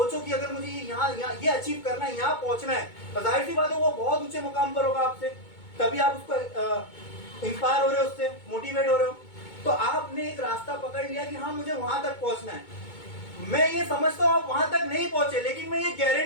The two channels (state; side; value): late; right; 2.2 ms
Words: कि अगर मुझे यहाँ ये अचीव करना है, यहाँ पहुंचना है, तो जाहिर सी बात है वो बहुत ऊंचे मुकाम पर होगा आपसे, तभी आप उसको इंस्पायर हो रहे हो, उससे मोटिवेट हो रहे हो। तो आपने एक रास्ता पकड़ लिया कि हाँ मुझे वहां तक पहुंचना है। मैं ये समझता हूँ आप वहां तक नहीं पहुंचे, लेकिन मैं ये